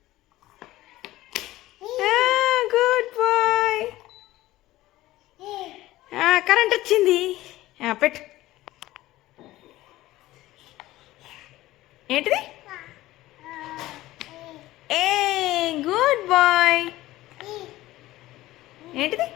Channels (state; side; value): quieter; right; 16.6 dB